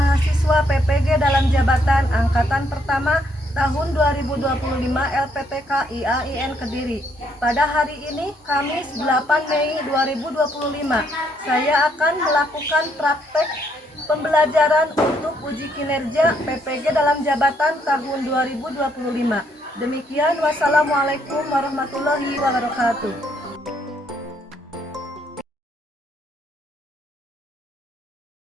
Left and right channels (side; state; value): both; normal; correlation 0.71